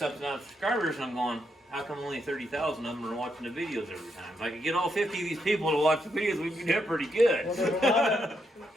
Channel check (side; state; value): both; normal; correlation 0.79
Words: subscribers, and I'm going, how come only 30,000 of them are watching the videos every time? If I could get all 50 of these people to watch the videos, we'd be doing pretty good. Well, there's a lot of,